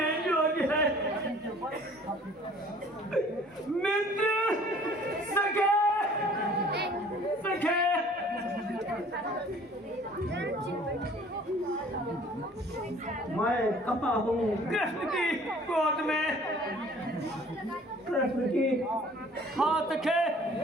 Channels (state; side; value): normal; both; correlation 0.52